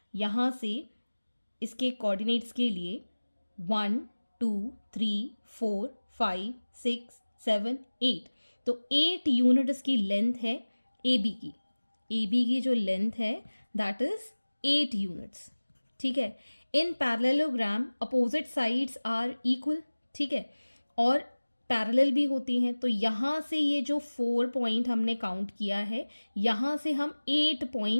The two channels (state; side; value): inverted; both; correlation -1.00